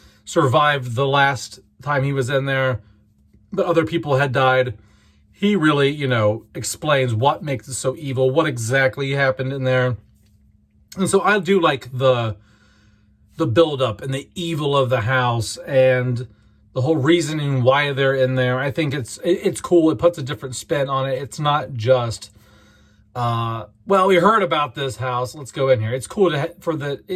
survived the last time he was in there, but other people had died. He really, explains what makes it so evil, what exactly happened in there. And so I do like the build-up and the evil of the house and the whole reasoning why they're in there. I think it's cool. It puts a different spin on it. It's not just, well, we heard about this house, let's go in here. It's cool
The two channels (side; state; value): both; identical; correlation 1.00